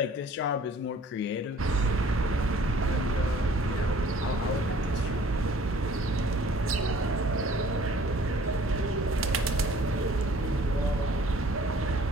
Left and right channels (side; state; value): both; normal; correlation 0.54